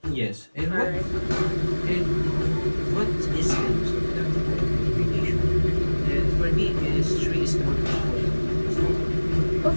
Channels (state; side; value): inverted; both; correlation -1.00